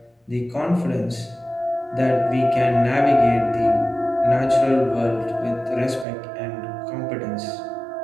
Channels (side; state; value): left; drops out; at 6.1 s